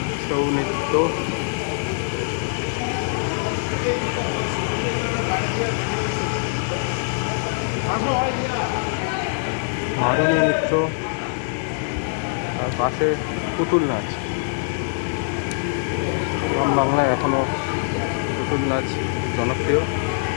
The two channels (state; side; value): silent; right; 63 dB below the other